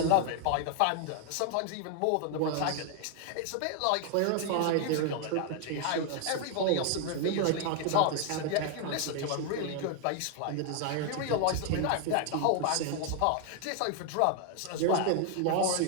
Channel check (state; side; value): different; both; correlation 0.00